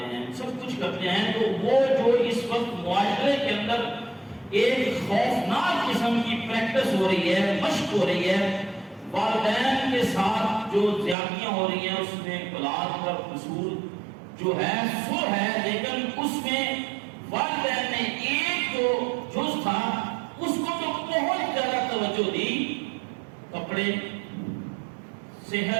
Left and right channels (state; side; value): drops out; left; at 11.2 s